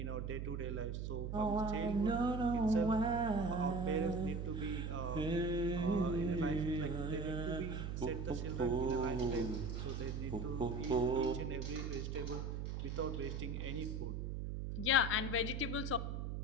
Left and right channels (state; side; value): noise; right; hum, 3 dB below the sound